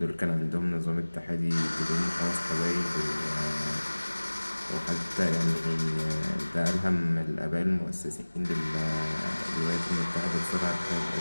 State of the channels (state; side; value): inverted; both; correlation -1.00